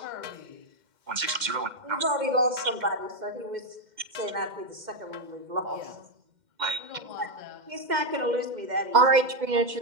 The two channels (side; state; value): left; late; 2.1 ms